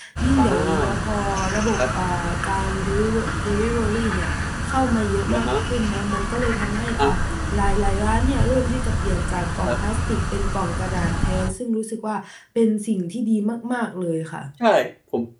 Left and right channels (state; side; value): identical; both; correlation 1.00